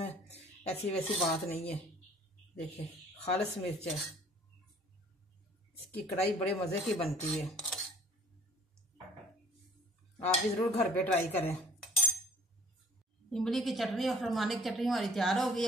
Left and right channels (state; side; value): normal; both; correlation 0.53